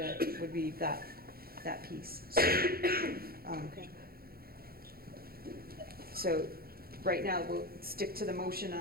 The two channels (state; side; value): late; left; 0.44 ms